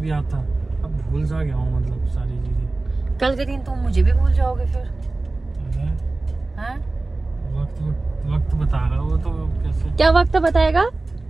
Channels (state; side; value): quieter; left; 3.2 dB